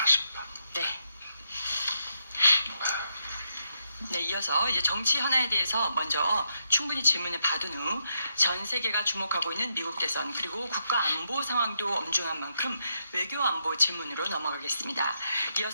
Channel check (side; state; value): both; inverted; correlation -0.82